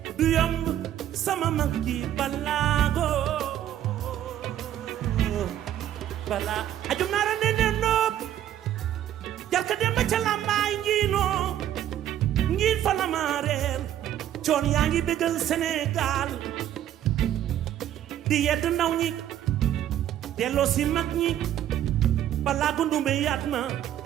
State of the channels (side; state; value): left; quieter; 11.6 dB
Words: du yomb sama mag ji balaago bala ajum naara ne ne nopp jarka dem ba ca lambaay ngiinoo ngiin fa la ma reer coon yaa ngi bégal Sénégal di yedd ndaw ñi delloo si mag ñi balaa gundumbe yaat na